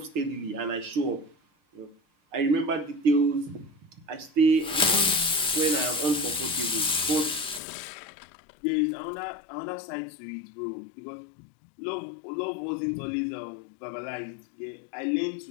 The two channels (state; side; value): drops out; right; at 7.6 s